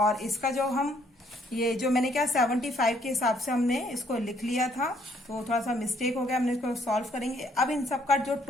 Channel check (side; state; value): both; normal; correlation 0.66